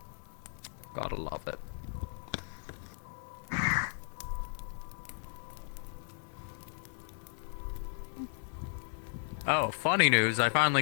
Gotta love it. Oh, funny news, I finally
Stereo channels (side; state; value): right; silent; 54 dB below the other